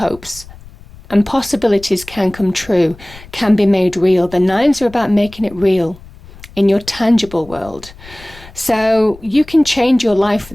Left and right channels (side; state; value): left; noise; rumble, 20 dB below the sound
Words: and possibilities can come true, can be made real. The nines are about making it real in your tangible world. So you can change your life for